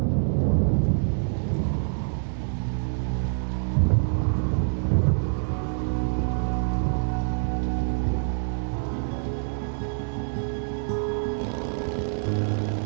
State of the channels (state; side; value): silent; left; 61 dB below the other